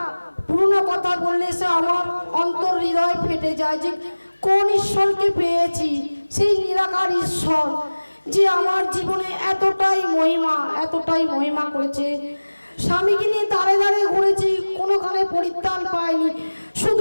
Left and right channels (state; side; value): inverted; both; correlation -1.00